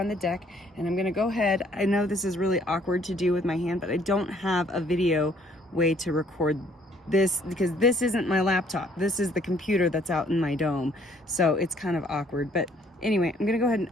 the deck, and I'm gonna go ahead. I know this is really awkward to do with my hand, but I don't have a video way to record this because this isn't my laptop. This is the computer that's out in my dome. So it's kind of awkward. But anyway, I'm gonna go ahead and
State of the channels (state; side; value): normal; both; correlation 0.62